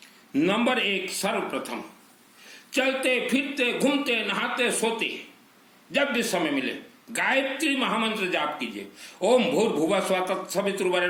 नंबर 1, सर्वप्रथम चलते फिरते घूमते नहाते सोते जब भी समय मिले गायत्री महामंत्र जाप कीजिए। ओम भूर्भुवः स्वः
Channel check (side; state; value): both; identical; correlation 1.00